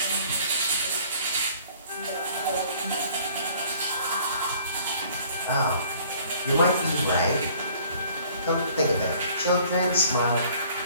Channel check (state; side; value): inverted; both; correlation -0.55